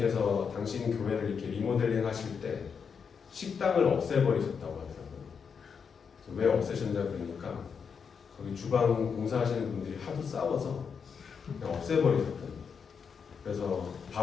당신 교회를 이렇게 리모델링 하실 때 식당을 없애버리셨다고 하더라고요. 왜 없애셨냐 그러니까 거기 주방 공사하시는 분들이 하도 싸워서 그냥 없애버리셨대요. 그래서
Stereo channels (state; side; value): quieter; right; 6.3 dB